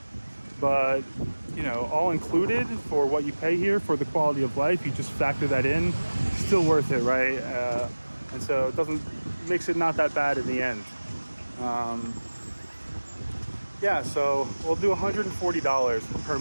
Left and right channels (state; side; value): inverted; both; correlation -1.00